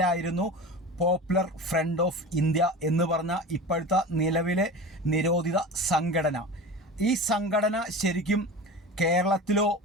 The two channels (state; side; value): normal; both; correlation 0.32